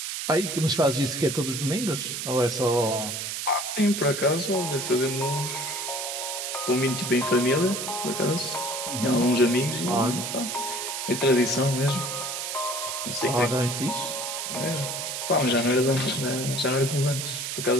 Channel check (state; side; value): noise; right; hiss, 4 dB below the sound